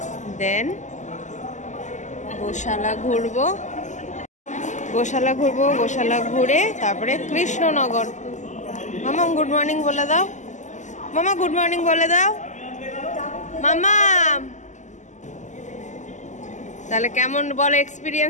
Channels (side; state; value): right; late; 0.35 ms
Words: দেন গোশালা ঘুরবো। গোশালা ঘুরে তারপরে কৃষ্ণনগর। মামা গুড মর্নিং বলে দাও। মামা গুড মর্নিং বলে দাও। মামা তাহলে কেমন বলো,